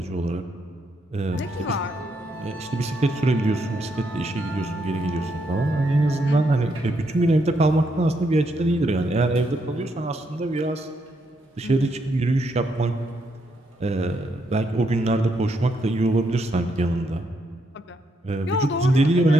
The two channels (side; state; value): both; normal; correlation 0.77